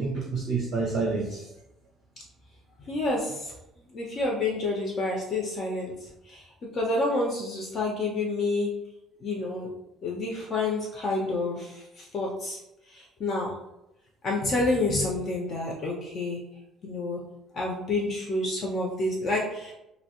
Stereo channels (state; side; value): normal; both; correlation 0.52